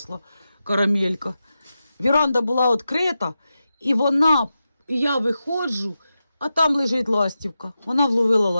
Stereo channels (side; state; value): both; inverted; correlation -0.91